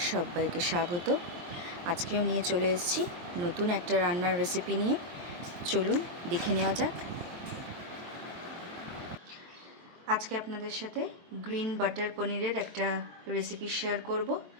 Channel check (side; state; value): left; late; 23 ms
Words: সবাইকে স্বাগত। আজকেও নিয়ে চলে এসেছি নতুন একটা রান্নার রেসিপি নিয়ে। চলুন দেখে নেওয়া যাক। আজকে আপনাদের সাথে গ্রিন বাটার পনিরের একটা রেসিপি শেয়ার করব।